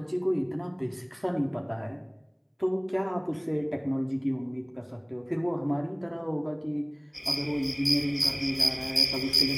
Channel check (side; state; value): both; identical; correlation 1.00